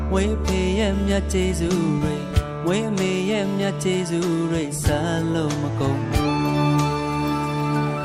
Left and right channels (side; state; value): both; identical; correlation 1.00